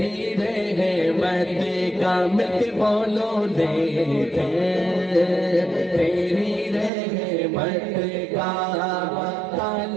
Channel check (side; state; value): left; drops out; at 6.9 s